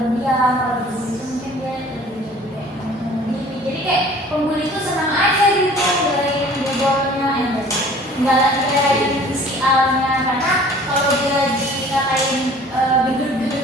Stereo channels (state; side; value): normal; both; correlation 0.49